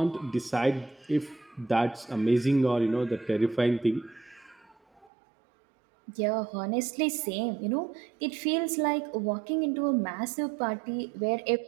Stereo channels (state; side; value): drops out; left; at 5.1 s